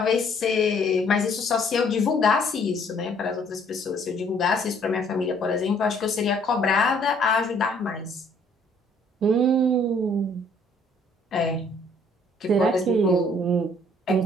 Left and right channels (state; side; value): normal; both; correlation 0.61